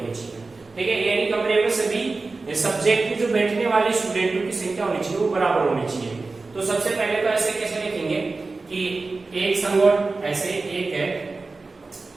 चाहिए। ठीक है, यानी कमरे में सभी सब्जेक्ट के जो बैठने वाले स्टूडेंटों की संख्या होनी चाहिए वो बराबर होनी चाहिए। तो सबसे पहले तो ऐसे कैसे लिखेंगे कि एक संगोष्ठी, ऐसे एक है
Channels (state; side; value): quieter; left; 3.7 dB